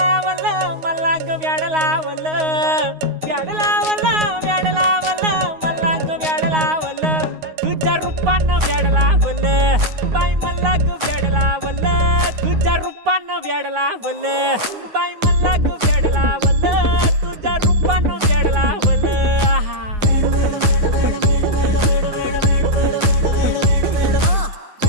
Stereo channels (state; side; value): late; left; 9.5 ms